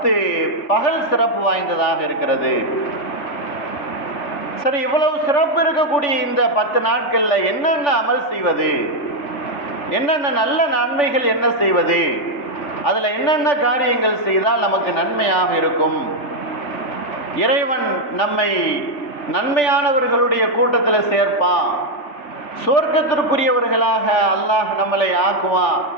பகல் சிறப்பு வாய்ந்ததாக இருக்கிறது. சரி, இவ்வளவு சிறப்பு இருக்கக்கூடிய இந்த 10 நாட்கள்ல என்னென்ன அமல் செய்வது, என்னென்ன நல்ல நன்மைகள் என்ன செய்வது, அதுல என்னென்ன காரியங்கள் செய்தால் நமக்கு நன்மையாக இருக்கும், இறைவன் நம்மை நன்மையானவர்களுடைய கூட்டத்தில் சேர்ப்பான், சொர்க்கத்திற்குரியவர்களாக அல்லாஹ் நம்மளை ஆக்குவான்,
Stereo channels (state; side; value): late; right; 3.4 ms